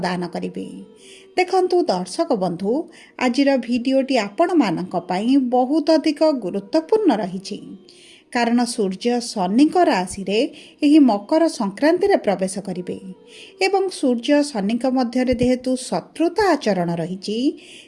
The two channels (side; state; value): both; identical; correlation 1.00